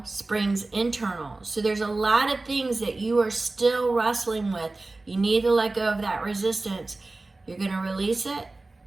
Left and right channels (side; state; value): left; quieter; 3.2 dB